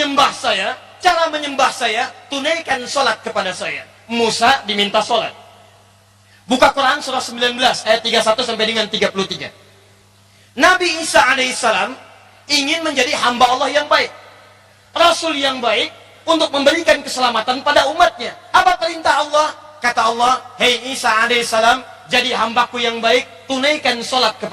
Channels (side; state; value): both; identical; correlation 1.00